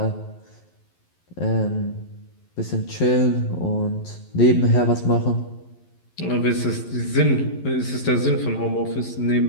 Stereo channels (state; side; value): late; right; 11 ms